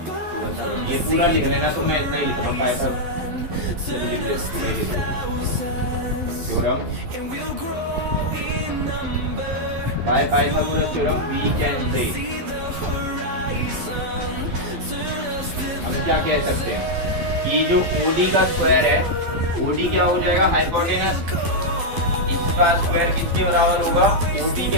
ये पूरा लिख लेना, तो मैं इतना ही लिखूंगा, Pythagoras theorem, by Pythagoras theorem we can say हम क्या कह सकते हैं कि जो OD का स्क्वायर है, OD क्या हो जाएगा? हाइपोटेनस, इसका स्क्वायर किसके बराबर होगा? OB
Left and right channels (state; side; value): late; left; 12 ms